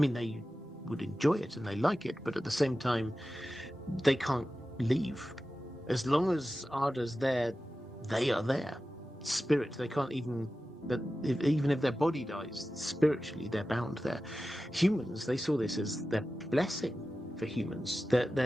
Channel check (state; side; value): normal; both; correlation 0.94